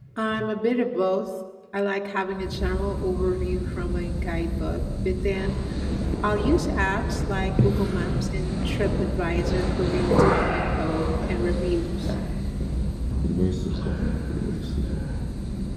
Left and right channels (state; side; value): identical; both; correlation 1.00